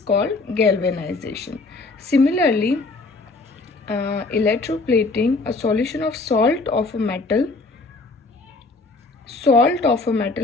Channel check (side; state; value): right; quieter; 3.5 dB